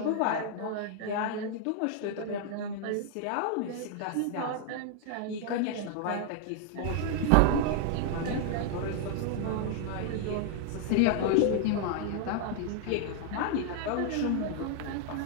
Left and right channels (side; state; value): both; different; correlation 0.00